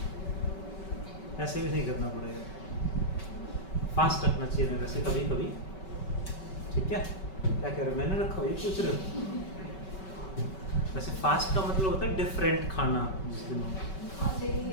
ऐसे भी नहीं करना पड़ेगा। फास्ट रखना चाहिए वैसे कभी कभी, ठीक है? क्या कह रहे हो? मैंने रखा हुआ, ये पूछ रहे हो? वैसे फास्ट का मतलब होता है डिफरेंट खाना। जिस दिन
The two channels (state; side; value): late; right; 5.3 ms